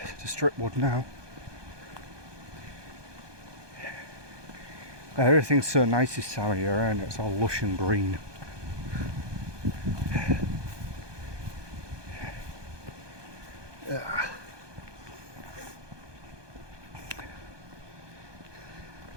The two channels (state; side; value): late; left; 1.2 ms